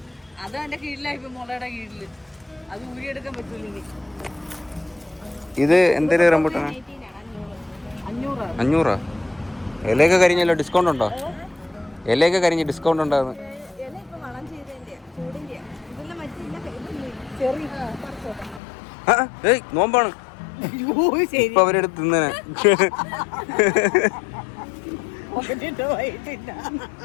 അത് എന്റെ കീഴിലായി. മുളയുടെ കീഴില് അത് ഊരിയെടുക്കാൻ പറ്റൂല ഇനി. ഇത് എന്തൊരു റംബൂട്ടാനാ? 500. ഇലയൊക്കെ കരിഞ്ഞല്ലോ. ഡിസ്കൗണ്ട് ഉണ്ടോ? ഇലയൊക്കെ കരിഞ്ഞ് ഡിസ്കൗണ്ട് ഉണ്ടാകുന്നു. നോമ്പാണ്. ഇപ്പൊ അവരെടുത്ത് തിന്നനെ.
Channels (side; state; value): right; drops out; at 18.6 s